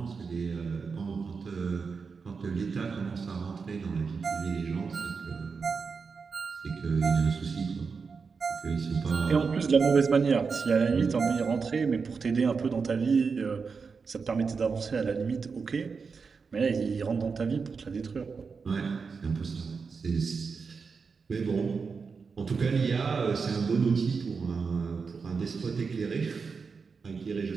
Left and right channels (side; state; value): left; quieter; 5.2 dB